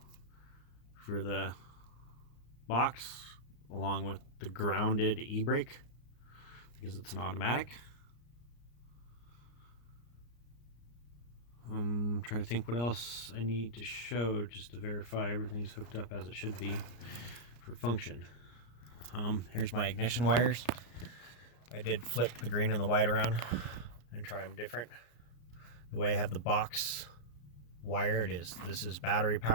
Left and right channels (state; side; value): late; right; 34 ms